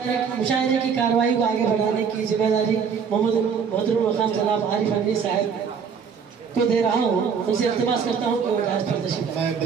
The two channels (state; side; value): quieter; left; 6.5 dB